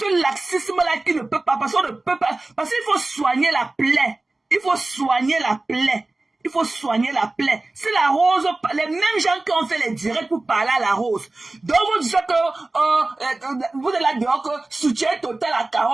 ce laxisme-là qui ne peut pas. Parce qu'on ne peut pas. Parce qu'il faut soigner la plaie. Il faut soigner la plaie. Il faut soigner la plaie. C'est la rose, les mêmes gens qui ont fait les directs pour parler à la rose. Donc vous dites que vous êtes là dehors que soutien total à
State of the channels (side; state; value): left; quieter; 3.0 dB